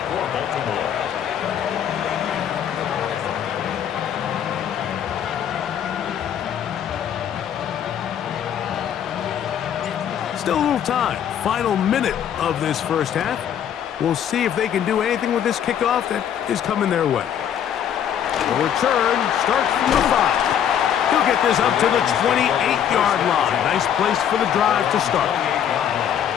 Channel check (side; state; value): right; quieter; 9.3 dB